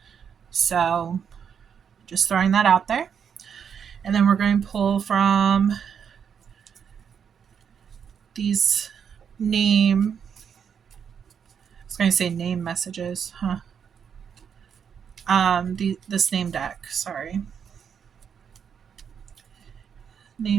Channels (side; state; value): left; quieter; 7.4 dB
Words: So just throwing that out there. And then we're going to pull from these name, I was going to say name messages, this name deck, sorry.